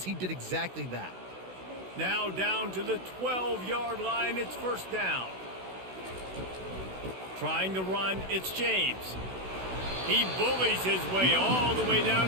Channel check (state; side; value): late; left; 16 ms